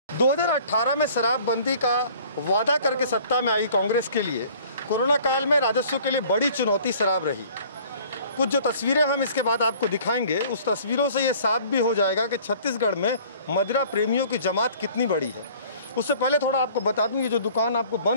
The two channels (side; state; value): both; inverted; correlation -0.51